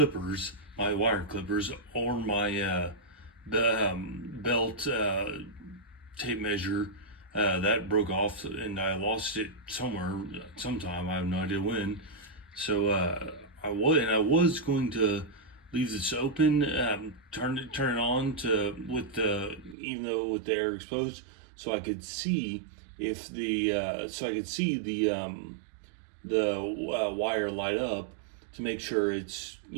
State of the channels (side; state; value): left; drops out; at 19.8 s